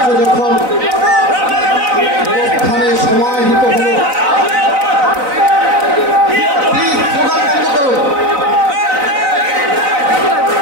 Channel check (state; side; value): late; left; 4.0 ms